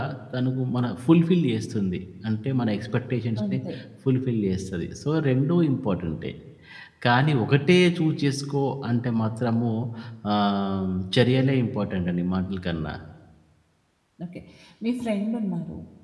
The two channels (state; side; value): identical; both; correlation 1.00